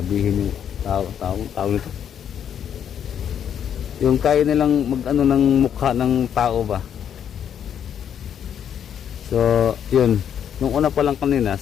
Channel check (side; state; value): right; quieter; 8.9 dB